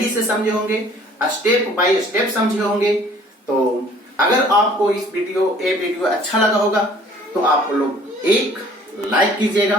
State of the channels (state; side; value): normal; both; correlation 0.54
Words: से समझे होंगे, स्टेप बाय स्टेप समझे होंगे। तो अगर आपको इस वीडियो अच्छा लगा होगा तो आप लोग एक लाइक